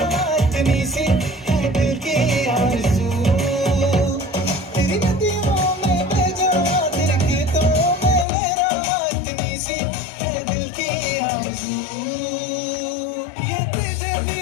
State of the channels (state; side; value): drops out; right; at 8.2 s